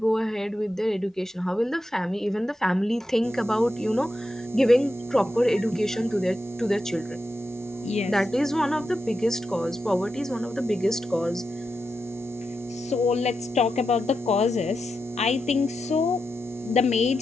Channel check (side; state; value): both; normal; correlation 0.88